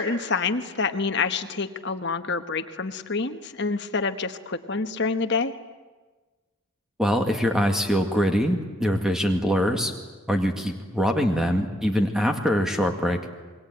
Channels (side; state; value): both; normal; correlation 0.60